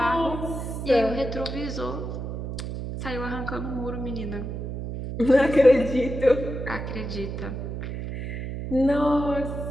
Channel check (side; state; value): right; noise; hum, 6 dB below the sound